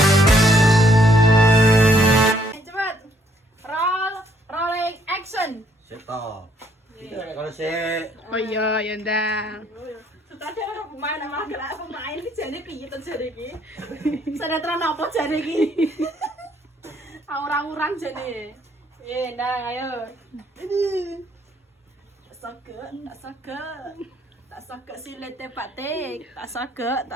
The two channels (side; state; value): both; normal; correlation 0.68